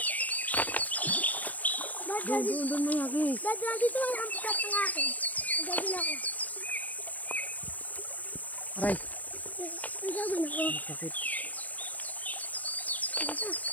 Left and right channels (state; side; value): late; right; 0.076 ms